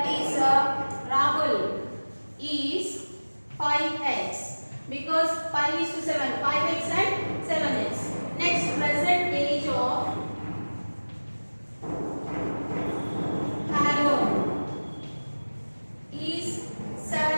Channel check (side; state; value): both; inverted; correlation -1.00